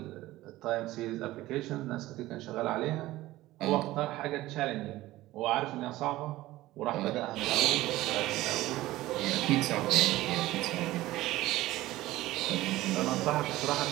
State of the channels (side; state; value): left; quieter; 16.9 dB